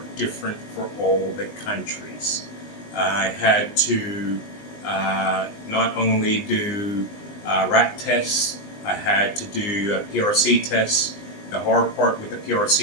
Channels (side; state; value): right; late; 20 ms